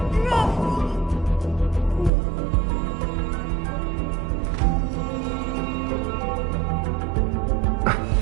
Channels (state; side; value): drops out; left; at 2.1 s